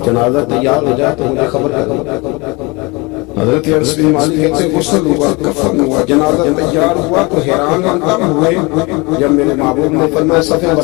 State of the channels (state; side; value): quieter; right; 26.3 dB